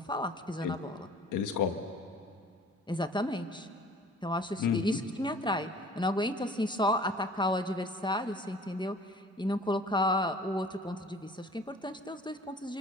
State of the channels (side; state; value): both; normal; correlation 0.49